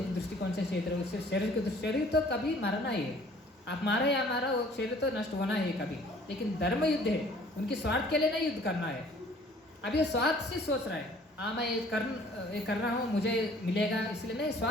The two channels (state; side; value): normal; both; correlation 0.54